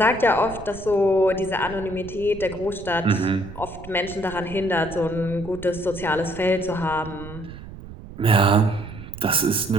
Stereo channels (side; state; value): right; noise; rumble, 14 dB below the sound